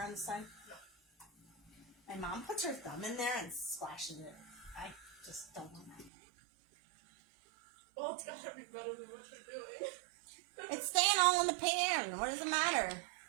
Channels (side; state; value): left; drops out; at 6.1 s